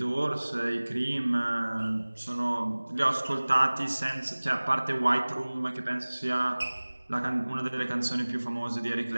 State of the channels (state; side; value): inverted; both; correlation -1.00